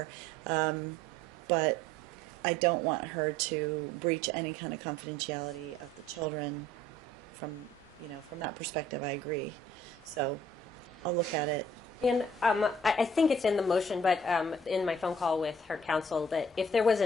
But I don't want her to breach any kind of confidentiality of the children from that perspective. I agree. So I'll look at it. And I think it's in the motion, but in my phone call with her counsel, that if there was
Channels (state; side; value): normal; both; correlation 0.56